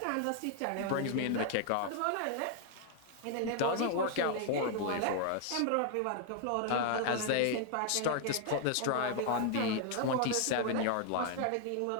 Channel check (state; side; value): different; both; correlation 0.00